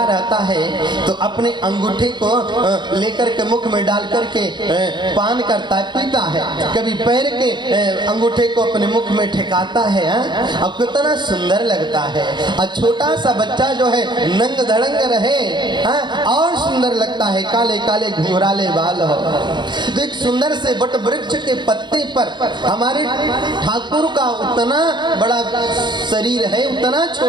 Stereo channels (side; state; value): left; late; 0.22 ms